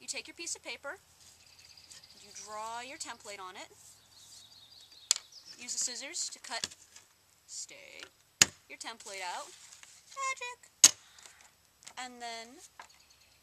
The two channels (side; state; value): both; identical; correlation 1.00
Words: take your piece of paper, you draw your template on it, use the scissors to cut, your template out, magic, and then